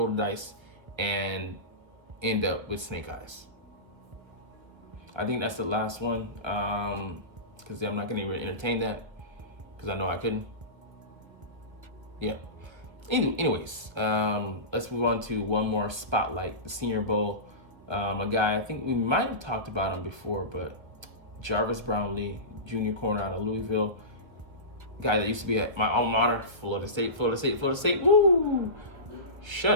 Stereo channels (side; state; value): left; late; 1.5 ms